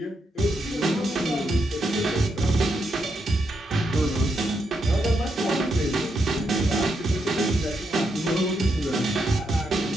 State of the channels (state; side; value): normal; both; correlation 0.81